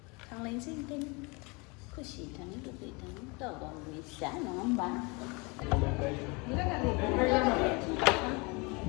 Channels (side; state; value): right; quieter; 28.7 dB